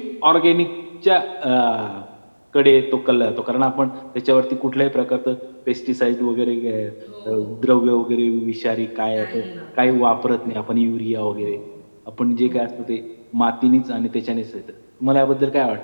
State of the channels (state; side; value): inverted; both; correlation -1.00